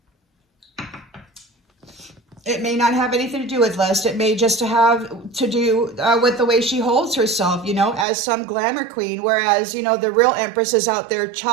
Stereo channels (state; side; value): drops out; left; at 8.1 s